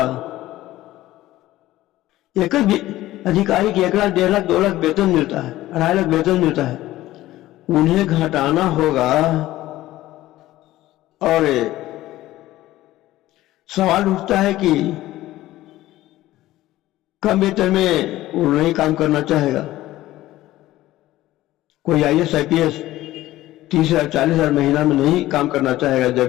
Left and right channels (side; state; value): right; quieter; 15.8 dB